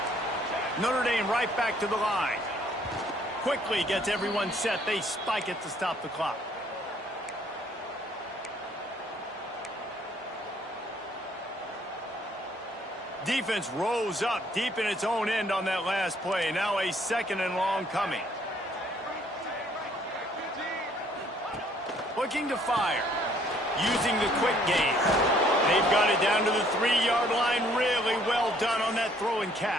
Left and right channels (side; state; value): both; normal; correlation 0.63